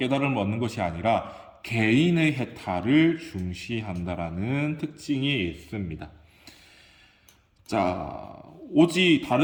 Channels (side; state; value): both; identical; correlation 1.00